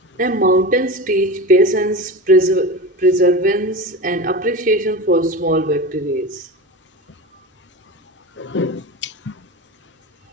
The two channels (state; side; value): normal; both; correlation 0.27